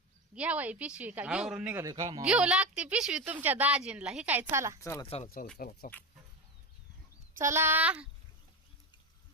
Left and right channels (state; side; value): normal; both; correlation 0.20